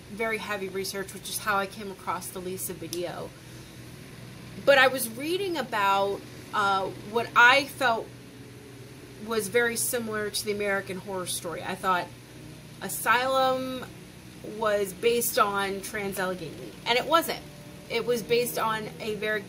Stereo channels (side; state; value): both; identical; correlation 1.00